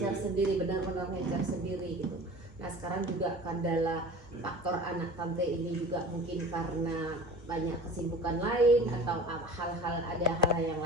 sendiri, benar-benar ngecer sendiri gitu. Nah sekarang juga kendala faktor anak Tante ini juga mungkin karena banyak kesibukan lain atau ada hal yang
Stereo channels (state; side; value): normal; both; correlation 0.39